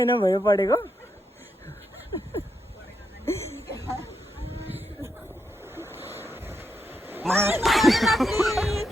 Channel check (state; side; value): normal; both; correlation 0.82